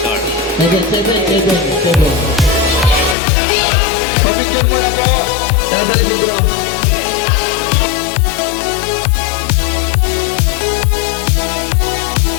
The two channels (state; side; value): drops out; right; at 3.2 s